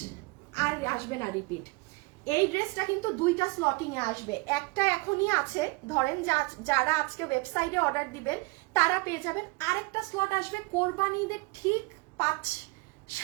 আর আসবে না রিপিট। এই ড্রেসটা কিন্তু দুইটা স্লটিং এ আসবে, একটা এখনই আছে, ধরেন যারা আজকে ওয়েবসাইটে অর্ডার দিবেন তারা পেয়ে যাবেন, আরেকটা স্লট আসবে কোরবানি ঈদের ঠিক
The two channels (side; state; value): left; quieter; 25.9 dB